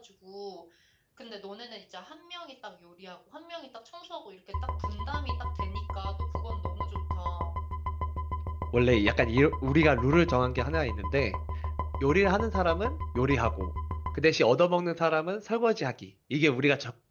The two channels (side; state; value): both; identical; correlation 1.00